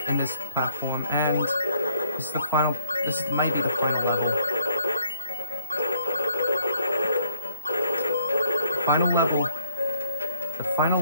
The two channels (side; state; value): both; inverted; correlation -0.64